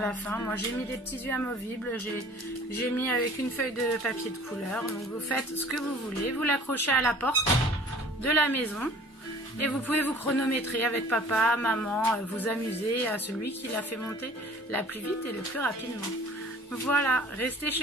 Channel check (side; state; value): both; normal; correlation 0.49